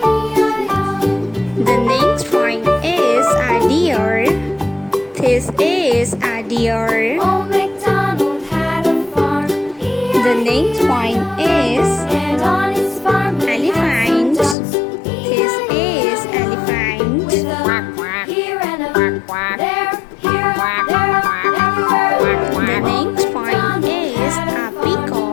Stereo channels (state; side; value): drops out; right; at 14.6 s